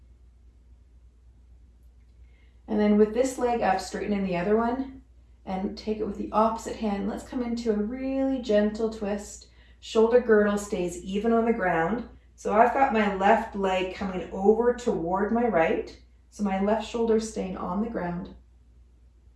And then with this leg up, straighten in the other one and take it with the opposite hand. Let's come into a really gentle twist. Shoulder girdle stays even on the ground. So I've got my left leg coming over toward my right. So my left shoulder is staying on the ground.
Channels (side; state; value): both; identical; correlation 1.00